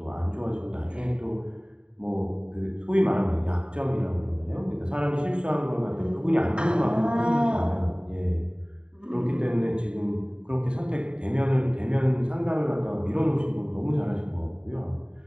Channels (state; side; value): late; left; 0.050 ms